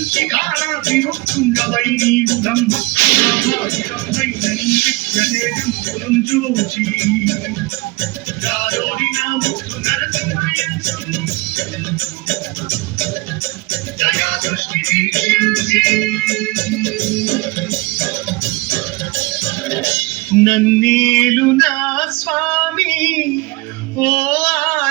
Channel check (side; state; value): left; quieter; 23.7 dB